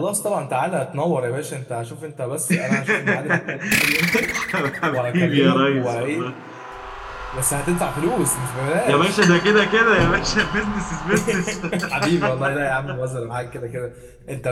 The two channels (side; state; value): both; identical; correlation 1.00